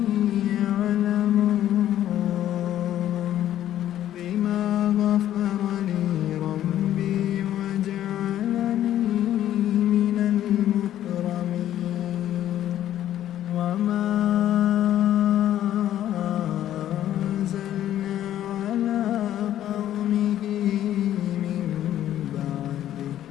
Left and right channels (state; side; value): quieter; right; 12.0 dB